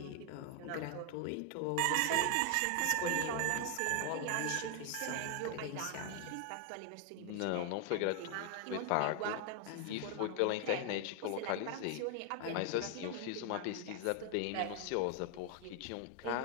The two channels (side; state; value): both; different; correlation 0.00